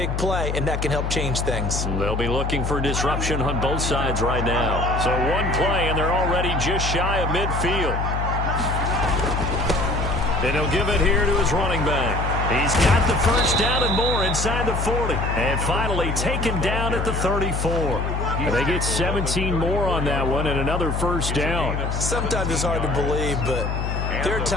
play, and that can help change things. They'll be looking for disruption on both sides right now. So one play, and they're already just shy of midfield. And he'll give it here to his running back. He's got the first down and more inside the 40. And finally taken down at the 34. And they get 17 more on that one and another first down. Sometimes it's hard to believe, but there are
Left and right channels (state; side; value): noise; left; hum, 1 dB below the sound